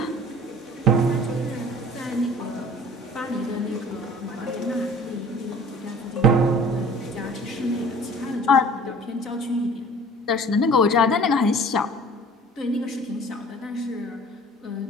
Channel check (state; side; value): normal; both; correlation 0.47